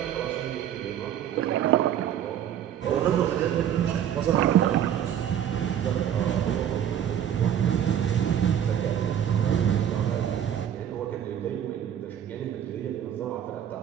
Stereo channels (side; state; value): left; quieter; 9.9 dB